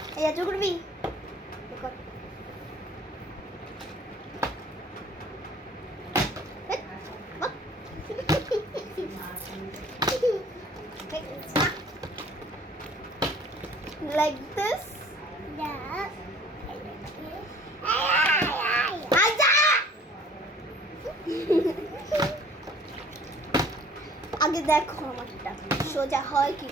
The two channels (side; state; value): both; normal; correlation 0.52